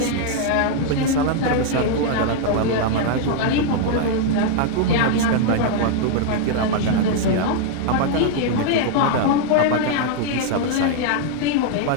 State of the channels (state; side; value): different; both; correlation 0.00